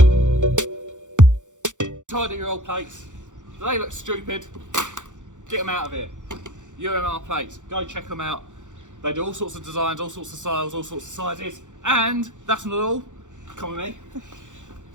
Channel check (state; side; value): late; left; 0.86 ms